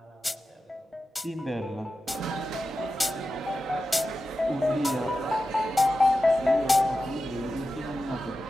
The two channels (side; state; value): both; normal; correlation 0.92